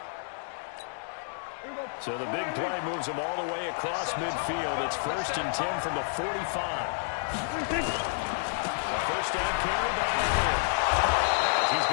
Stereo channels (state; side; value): silent; right; digital silence